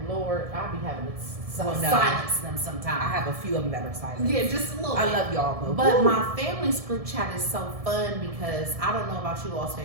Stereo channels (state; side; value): late; left; 1.7 ms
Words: Lord, I'll be having to silence them sometimes. I have a few of them that are silent. Yeah, just a little bit. I love y'all though. But my family's group chat is so fun because I don't know about you all's